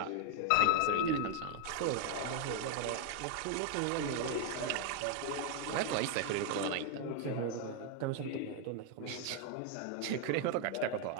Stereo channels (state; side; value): different; both; correlation 0.01